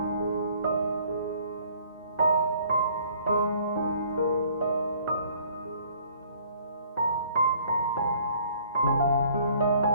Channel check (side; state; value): both; inverted; correlation -0.58